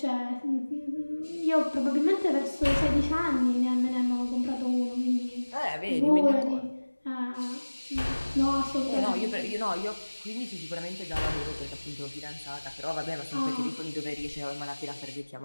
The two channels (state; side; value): inverted; both; correlation -1.00